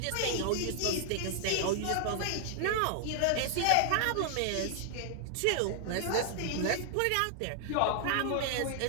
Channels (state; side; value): different; both; correlation 0.00